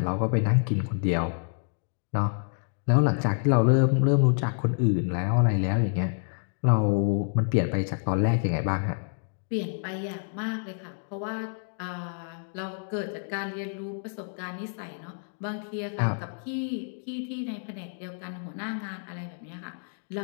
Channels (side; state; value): right; silent; digital silence